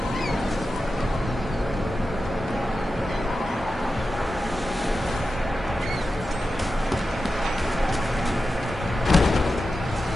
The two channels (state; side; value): normal; both; correlation 0.91